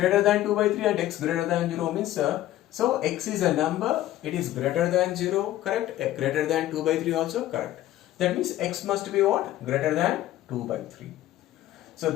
than 2 by 3 and x greater than 0 means so x is a number, it is greater than 0, correct? Greater than 2 by 3 also correct. That means x must be what? Greater than 2 by 3. So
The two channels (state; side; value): quieter; right; 14.2 dB